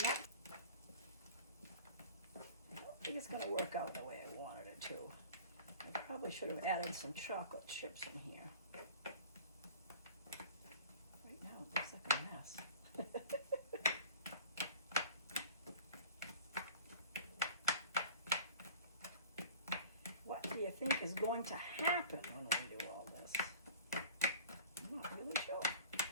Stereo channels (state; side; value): inverted; both; correlation -0.41